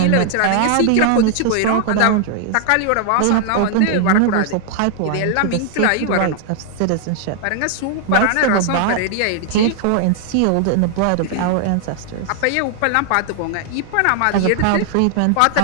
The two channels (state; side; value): different; both; correlation 0.00